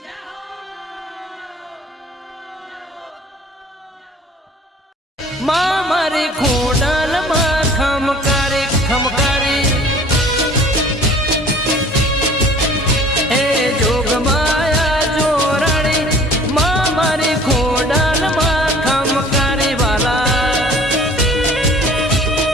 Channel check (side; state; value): both; normal; correlation 0.49